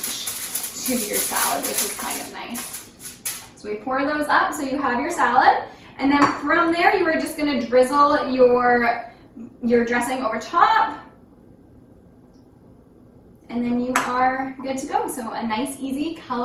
to your salad, which is kind of nice. So we pour those up so you have your salad. And then from there, you are just gonna drizzle your dressing over top. And then you are good to go. So a nice, easy,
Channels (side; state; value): both; identical; correlation 1.00